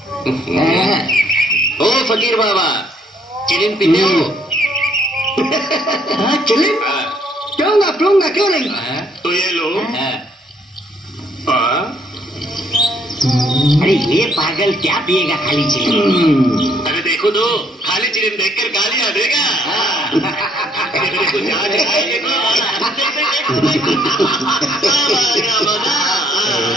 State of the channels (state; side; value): normal; both; correlation 0.67